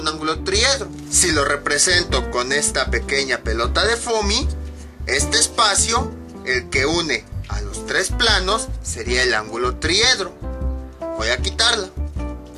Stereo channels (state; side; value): identical; both; correlation 1.00